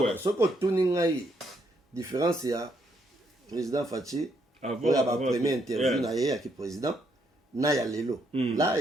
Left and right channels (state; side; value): normal; both; correlation 0.74